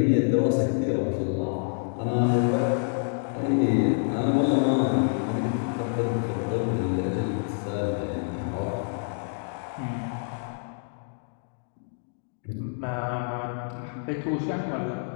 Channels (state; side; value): silent; right; digital silence